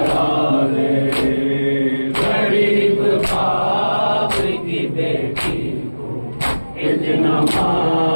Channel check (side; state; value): both; inverted; correlation -1.00